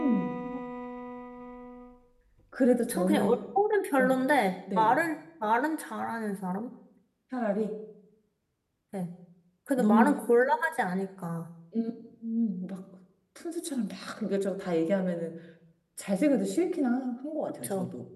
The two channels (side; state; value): both; identical; correlation 1.00